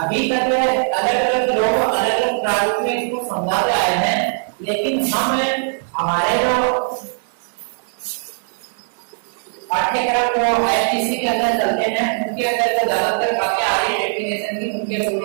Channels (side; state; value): left; silent; 66 dB below the other